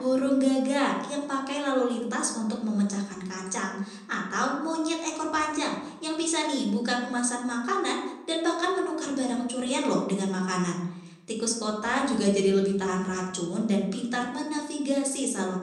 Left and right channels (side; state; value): both; identical; correlation 1.00